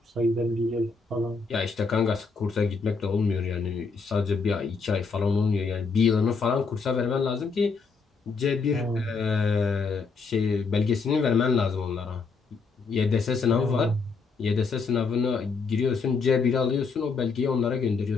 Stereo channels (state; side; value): quieter; right; 4.7 dB